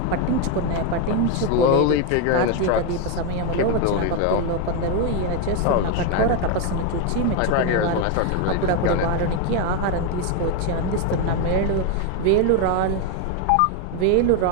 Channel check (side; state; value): both; different; correlation 0.02